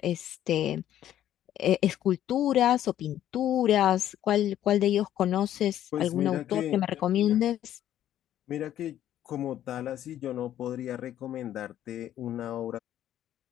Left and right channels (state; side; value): quieter; right; 11.7 dB